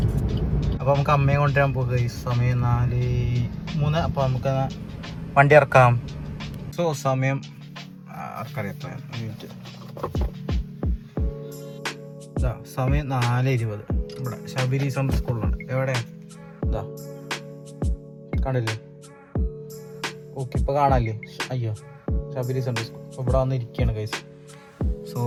അപ്പോൾ നമുക്ക് അമ്മയെ കൊണ്ടുവരാൻ പോകുക ഗൈസ്. സമയം 4:03. അപ്പോൾ നമുക്ക് വണ്ടി ഇറക്കാം. സോ സമയം ആർക്കറിയാം മിനിറ്റ്. സമയം 4:20. ഇവിടെ ശബരി സമ്മർ സ്കൂളിലുണ്ട്. എവിടെയാണ്? ഇതാ കണ്ടില്ലേ? ഓക്കെ, ഇപ്പോൾ കാണാല്ലേ? അയ്യോ, ശബരി സമ്മർ സ്കൂൾ. അപ്പോൾ ഇവിടെ വന്ന് ഇരിക്കുകയാണ് ഗൈസ്. സോ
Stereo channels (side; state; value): both; identical; correlation 1.00